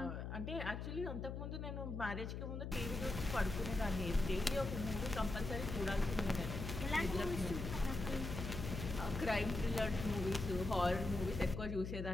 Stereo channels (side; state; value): left; noise; hum, 5 dB below the sound